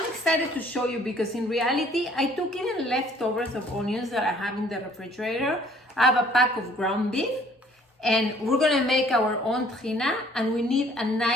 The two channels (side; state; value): both; normal; correlation 0.58